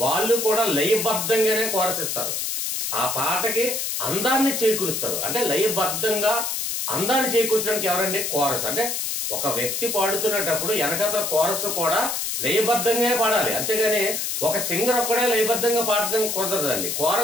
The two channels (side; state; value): left; noise; hiss, 2 dB below the sound